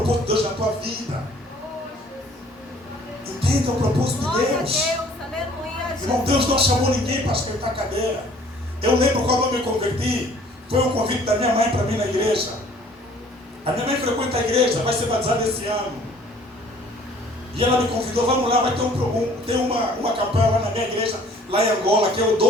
de Deus na tua vida. Entenda o propósito de Deus. Irmão, Deus não chamou ninguém para esquentar cadeira. Eu lembro quando eu me converti, foi um convite da minha mãe para mim na igreja. A minha mãe frequenta a igreja, vai ser batizada esse ano. E ela me convidou, vamos lá, vai ter uma campanha lá na minha igreja, lá em Angola, que é o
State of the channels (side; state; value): both; normal; correlation 0.55